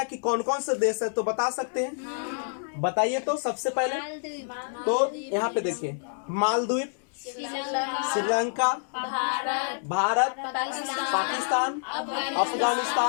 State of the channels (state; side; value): silent; right; digital silence